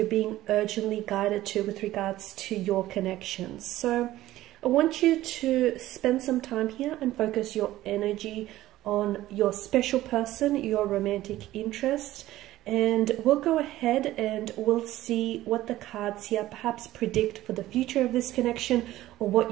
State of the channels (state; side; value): quieter; left; 15.4 dB